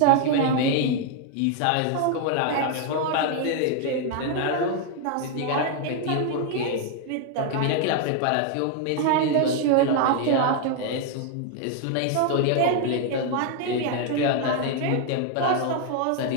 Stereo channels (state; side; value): different; both; correlation 0.00